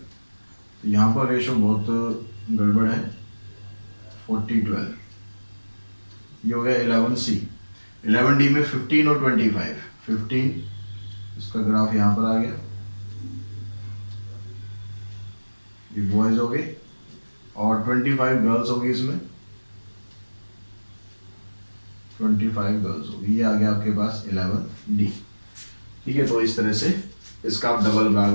तो यहाँ पर रेशो बहुत गड़बड़ है, 40-12। ये हो गया 11C। 11D में 15 और 25, 15 इसका ग्राफ यहाँ पर आ गया, ये बॉयज हो गए। और 25 गर्ल्स होगी इसमें, 25 गर्ल्स होगी। ये आ गया आपके पास 11D। ठीक है, तो इस तरह से इसका आप डबल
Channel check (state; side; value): inverted; both; correlation -1.00